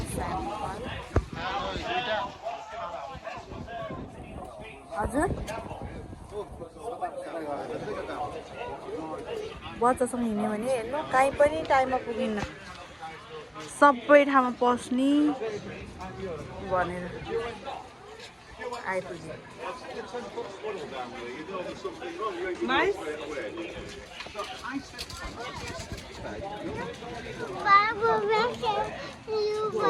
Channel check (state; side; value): identical; both; correlation 1.00